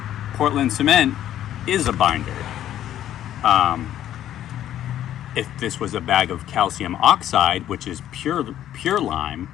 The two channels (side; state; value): right; quieter; 11.7 dB